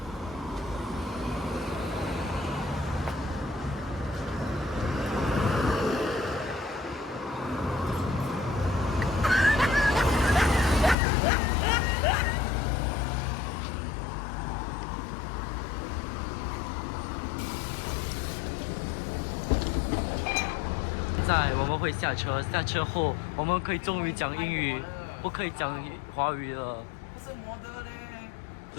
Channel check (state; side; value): drops out; right; at 11.0 s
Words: 我们会下车，下车后我们可以终于讲英语，不可以讲华语了。不是摩的嘞。